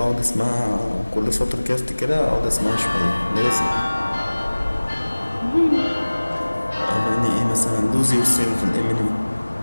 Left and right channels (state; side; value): inverted; both; correlation -1.00